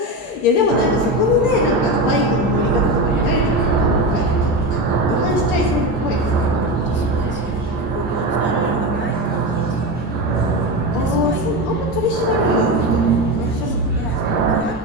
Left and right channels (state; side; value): normal; both; correlation 0.19